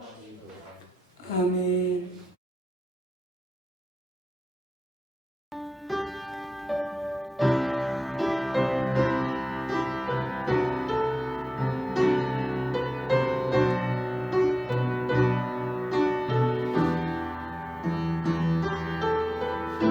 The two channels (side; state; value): both; normal; correlation 0.94